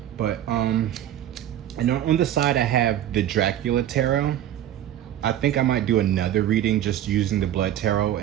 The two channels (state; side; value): quieter; left; 11.7 dB